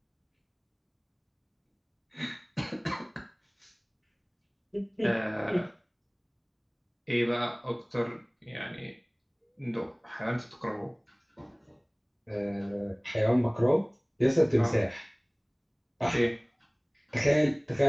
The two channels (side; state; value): both; identical; correlation 1.00